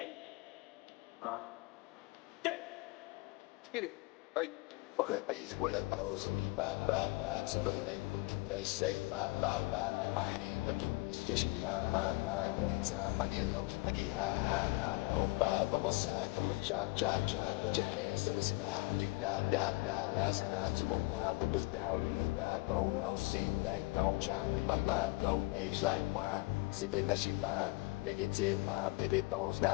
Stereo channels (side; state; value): right; quieter; 23.3 dB